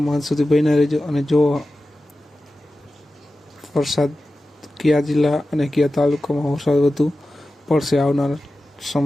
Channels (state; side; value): normal; both; correlation 0.94